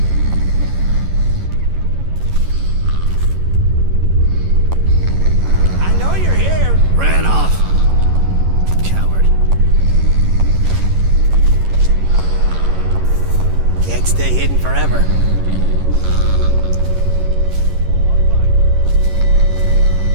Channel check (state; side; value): late; left; 11 ms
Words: I know you're here. Ran off. Coward. Can't stay hidden forever.